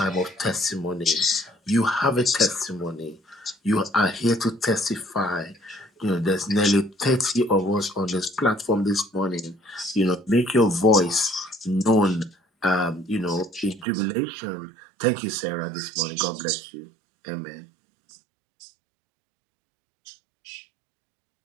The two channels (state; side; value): drops out; left; at 13.9 s